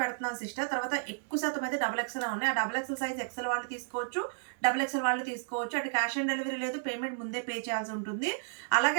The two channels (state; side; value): silent; left; digital silence